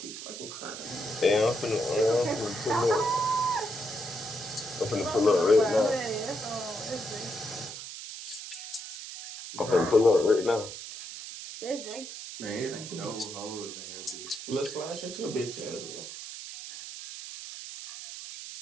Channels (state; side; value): noise; right; hiss, 10 dB below the sound